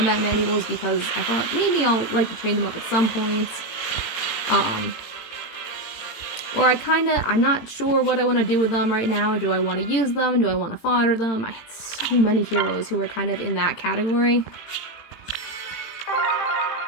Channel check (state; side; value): late; right; 18 ms